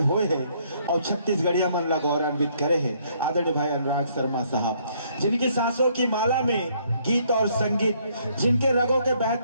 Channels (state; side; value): inverted; both; correlation -0.67